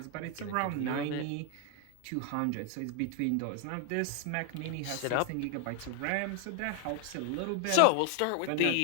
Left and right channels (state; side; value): different; both; correlation 0.00